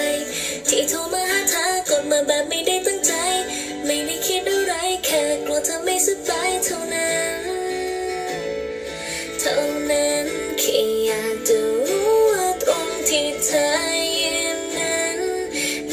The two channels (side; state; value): both; identical; correlation 1.00